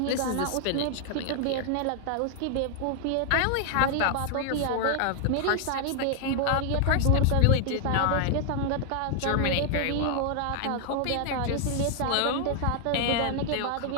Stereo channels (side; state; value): both; different; correlation 0.00